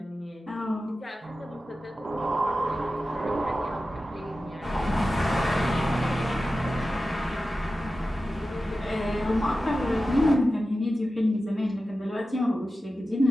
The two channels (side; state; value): both; normal; correlation 0.93